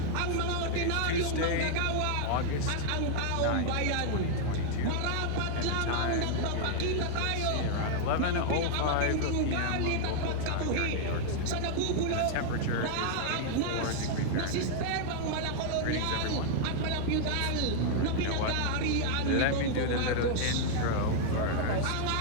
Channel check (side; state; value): both; different; correlation -0.01